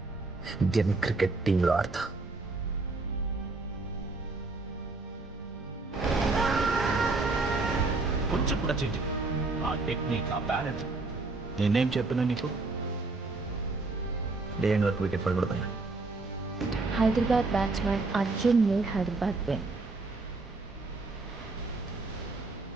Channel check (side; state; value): left; quieter; 3.5 dB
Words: ఇండియన్ క్రికెట్ టీంలో ఆడతా. కొంచెం కూడా చేంజ్ ఆ టెక్నిక్, ఆ బ్యాలెన్స్. నేనేం చెప్పినా నీకు? డే ఎండ్ వరకు వికెట్ పడకూడదు. Hyderabad batsmen Arjun made Hyderabad win.